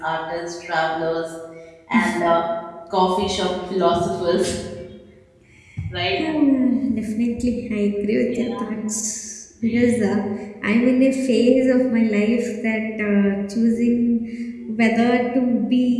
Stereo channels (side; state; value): both; identical; correlation 1.00